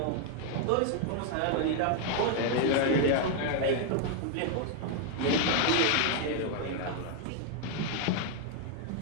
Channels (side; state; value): both; different; correlation 0.00